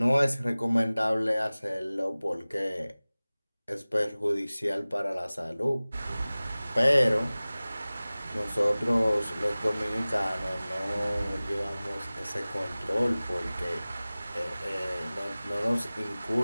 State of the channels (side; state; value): both; inverted; correlation -0.98